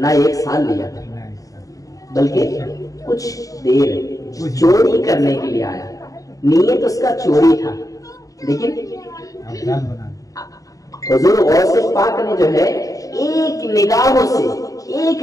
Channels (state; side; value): late; right; 0.16 ms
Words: ایک سال لیا, بلکہ کچھ دیر چوری کرنے کے لیے آیا. نیت اس کا چوری تھا, لیکن حضور غوث پاک نے جو ہے ایک نگاہوں سے, ایک